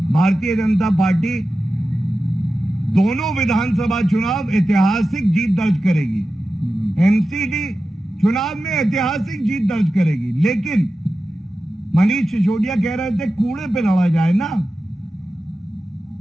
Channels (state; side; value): normal; both; correlation 0.93